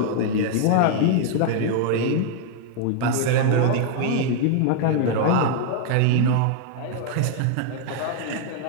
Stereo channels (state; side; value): different; both; correlation 0.00